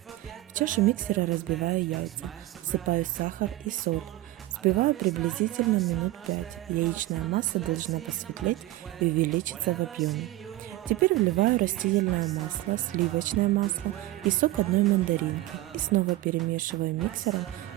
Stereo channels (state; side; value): quieter; left; 16.8 dB